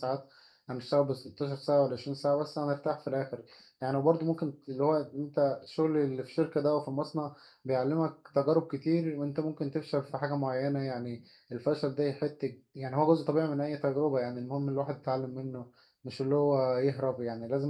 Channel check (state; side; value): identical; both; correlation 1.00